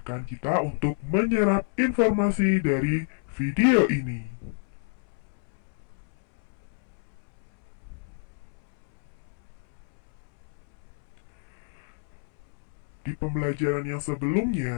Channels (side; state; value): right; silent; 59 dB below the other